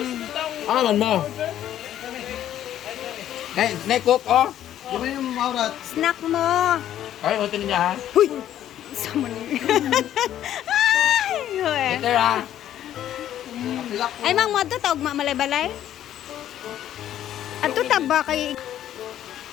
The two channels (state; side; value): quieter; right; 11.5 dB